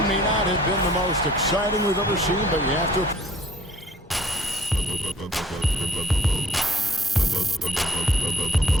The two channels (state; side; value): normal; both; correlation 0.56